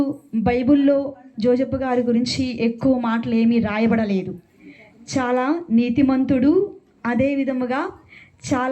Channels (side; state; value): both; identical; correlation 1.00